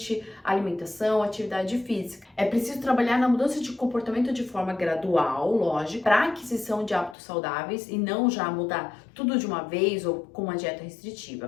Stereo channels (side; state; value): right; drops out; at 7.2 s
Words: alimentação, atividade física. É preciso trabalhar na mudança de comportamento de forma gradual, lógico, para a aquisição de hábitos saudáveis e não já mudar tudo de uma vez ou com uma dieta